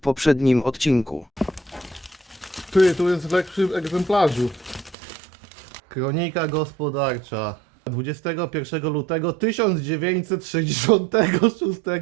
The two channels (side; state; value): left; drops out; at 5.0 s